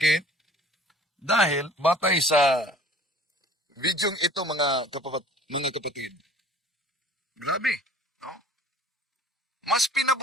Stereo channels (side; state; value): both; normal; correlation 0.50